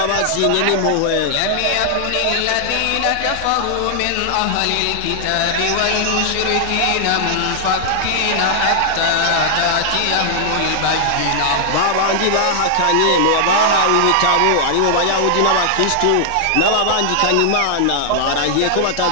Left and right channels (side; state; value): both; different; correlation -0.01